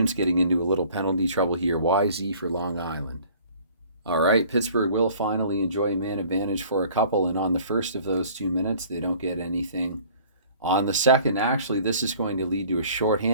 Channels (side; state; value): both; inverted; correlation -0.52